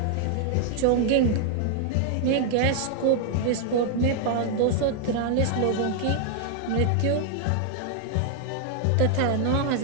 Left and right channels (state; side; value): different; both; correlation 0.00